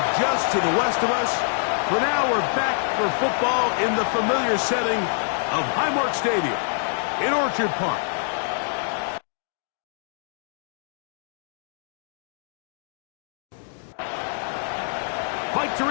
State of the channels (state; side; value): silent; right; digital silence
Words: just to the west of us, for now we're back for football in the familiar setting of Highmark Stadium in Orchard Park. Mike